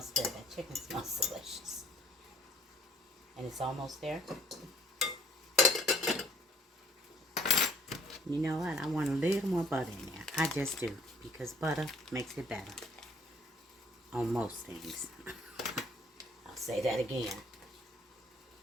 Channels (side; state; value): both; normal; correlation 0.58